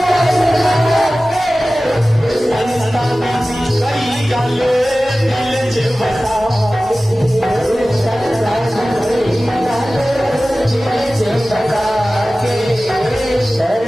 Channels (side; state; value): both; normal; correlation 0.96